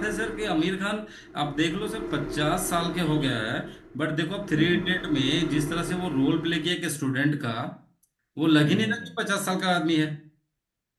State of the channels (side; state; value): both; identical; correlation 1.00